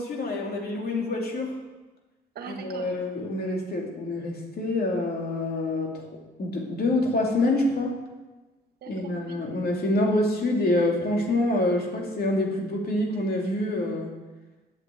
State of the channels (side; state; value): both; normal; correlation 0.55